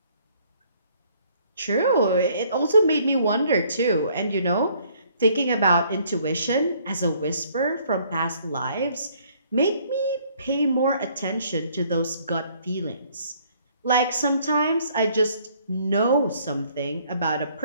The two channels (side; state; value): both; inverted; correlation -0.62